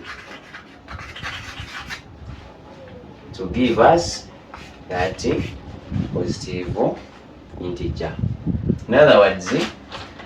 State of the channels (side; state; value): both; identical; correlation 1.00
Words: to give us that positive integer. In other words,